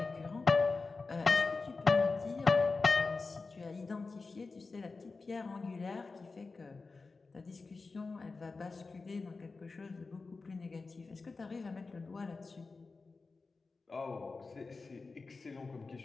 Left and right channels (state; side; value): quieter; right; 4.0 dB